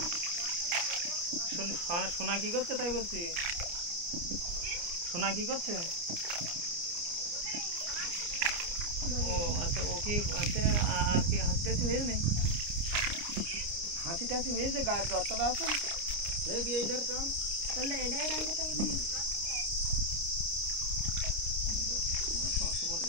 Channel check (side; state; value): left; late; 29 ms